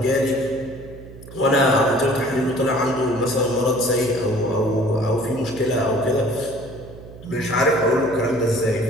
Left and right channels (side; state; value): right; noise; hum, 17 dB below the sound